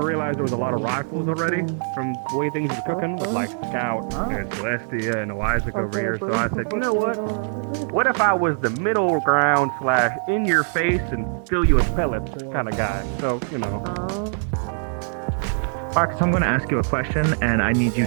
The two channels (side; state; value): left; silent; 64 dB below the other